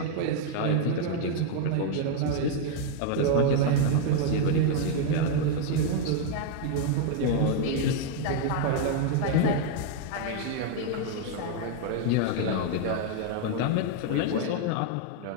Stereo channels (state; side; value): different; both; correlation 0.00